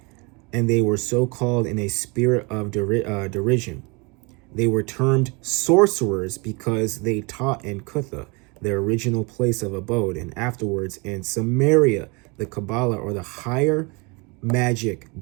and they were so called in a spirit of derision. They were termed sorcerers because they taught in Cutha, their original place of abode, and afterwards in Samaria, the Kabbalah, or the higher magic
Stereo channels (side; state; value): left; quieter; 29.1 dB